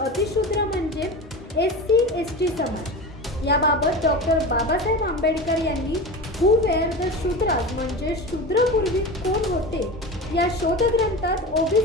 म्हणजे एससी एसटी समाज. याबाबत डॉक्टर बाबासाहेब आंबेडकर यांनी हू वेअर द शूद्रास म्हणजे शूद्रपूर्वी कोण होते या शोधग्रंथात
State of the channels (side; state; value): both; normal; correlation 0.27